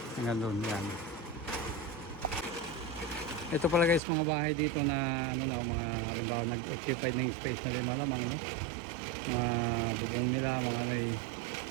Hanggang doon yan. Ito pala guys mga bahay dito na ano no, mga halimbawa nag-occupied ng space na rin malamang no. Mga bubong nila, mga ano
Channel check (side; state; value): left; drops out; at 4.0 s